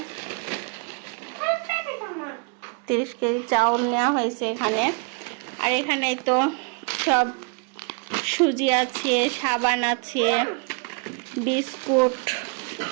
30 কেজি চাউল নেওয়া হয়েছে এখানে। আর এখানে তো সব সুজি আছে, সাবান আছে, বিস্কুট,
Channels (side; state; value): left; quieter; 36.6 dB